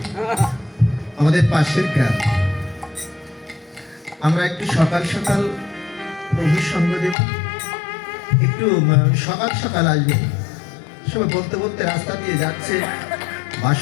আমাদের পাশের গ্রাম, আমরা একটু সকাল সকাল প্রভুর সঙ্গ দেব, একটু সকাল সকাল আসবে। সবাই বলতে বলতে রাস্তা দিয়ে যাচ্ছে,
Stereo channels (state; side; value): drops out; right; at 7.2 s